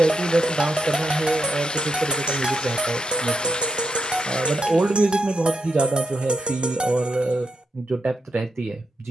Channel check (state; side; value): normal; both; correlation 0.84